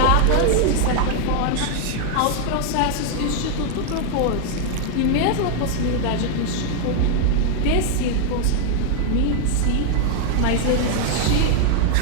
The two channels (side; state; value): both; different; correlation 0.00